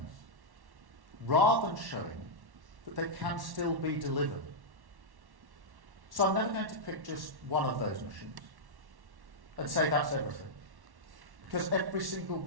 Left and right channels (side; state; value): left; late; 1.1 ms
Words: rather than showing that they can still be delivered. So I'm never going to pick just one of those missions and say that's everything, because every single